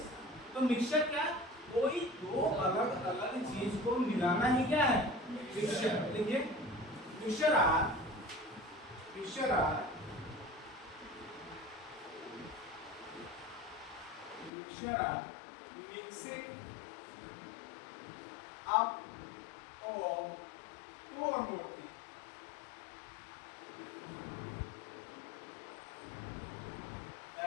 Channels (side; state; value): right; drops out; at 14.5 s